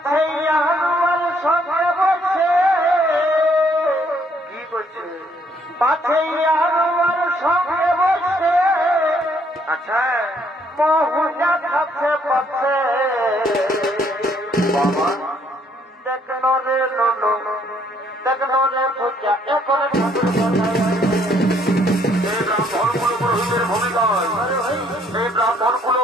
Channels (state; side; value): normal; both; correlation 0.67